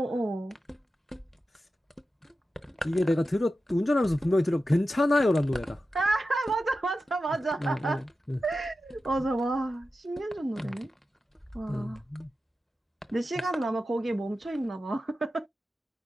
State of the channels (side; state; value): both; normal; correlation 0.92